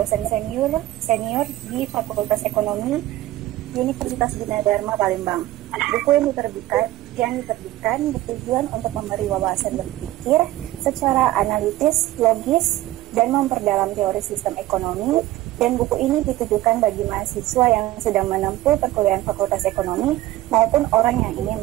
senior di Fakultas Ekonomi Universitas Gunadarma Palembang. Buku yang diterbitkan bertujuan untuk memberi wawasan berpikir secara analitis, logis, dan memperdalam teori sistem ekonomi. Dan buku ini ditujukan bagi mahasiswa yang sedang menempuh perkuliahan Fakultas Ekonomi maupun orang yang ingin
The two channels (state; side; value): quieter; left; 15.9 dB